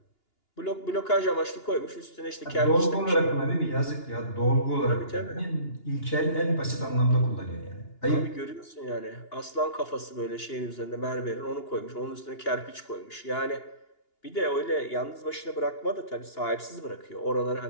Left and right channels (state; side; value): late; right; 2.8 ms